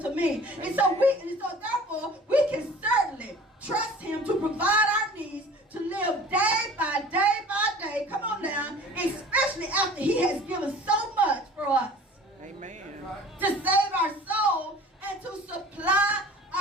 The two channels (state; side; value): normal; both; correlation 0.45